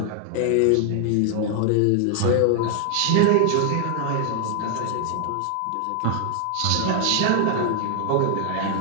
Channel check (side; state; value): both; different; correlation 0.00